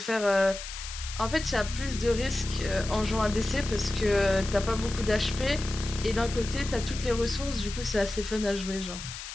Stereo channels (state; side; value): noise; left; hiss, 10 dB below the sound